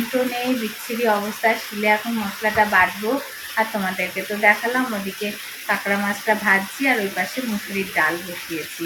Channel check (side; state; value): both; identical; correlation 1.00